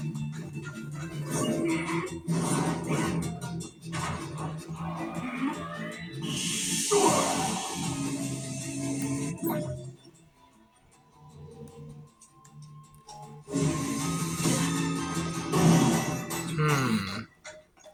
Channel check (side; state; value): both; identical; correlation 1.00